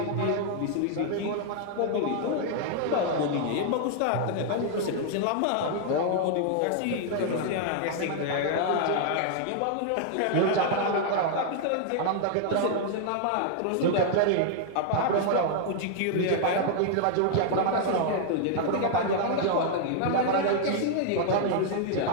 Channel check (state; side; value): different; both; correlation 0.00